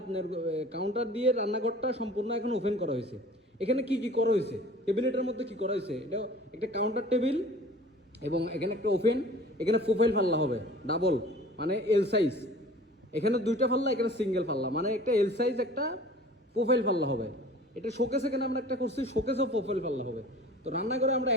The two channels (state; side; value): normal; both; correlation 0.45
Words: আপনার কাউন্টার দিয়ে রান্নাঘরটা সম্পূর্ণ এখন ওপেন করা হয়েছে। এখানে কি কি করা হয়েছে, টেবিলেটের মধ্যে কি করা হয়েছে, এটা একটা কাউন্টার টেবিল এবং এখানে একটা ওপেন, এখানে প্রোফাইল পাল্লা হবে ডাবল, মানে এল সাইজ। এখানে দুইটা পাল্লা, এখানে সিঙ্গেল পাল্লা, মানে একটা এল সাইজ একটা প্রোফাইল পাল্লা হবে। এটা শোকেস, এখানে আমরা একটা করছি শোকেসও প্রোফাইল পাল্লা হবে। তো রান্নাঘরে আমরা